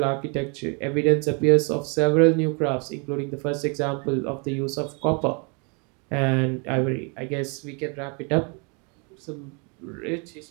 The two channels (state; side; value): quieter; left; 34.4 dB